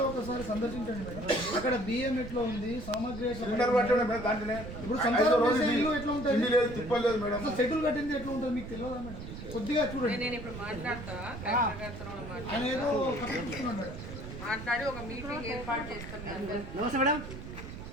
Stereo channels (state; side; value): noise; right; rumble, 10 dB below the sound